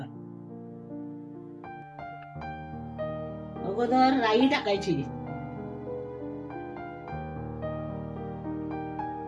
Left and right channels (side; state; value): both; identical; correlation 1.00